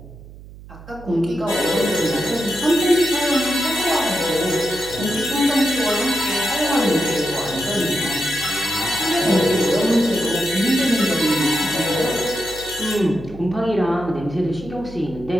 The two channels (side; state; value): right; noise; hum, 18 dB below the sound